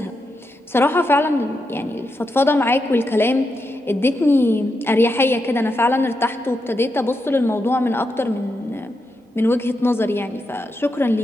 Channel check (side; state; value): both; normal; correlation 0.85